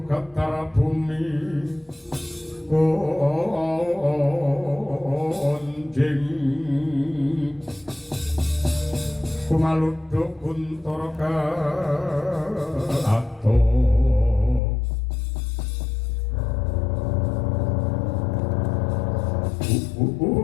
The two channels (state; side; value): drops out; right; at 14.6 s